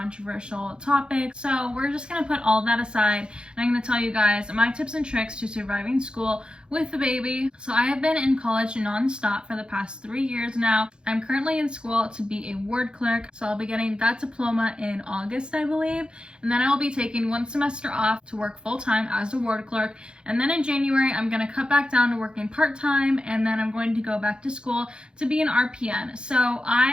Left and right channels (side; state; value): left; late; 0.051 ms